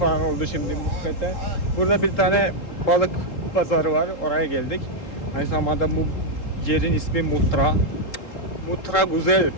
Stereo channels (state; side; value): late; right; 3.8 ms